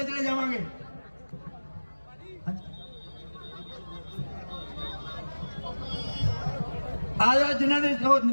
चले जावांगे। आ जाओ जिन्हों ने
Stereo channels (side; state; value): both; inverted; correlation -1.00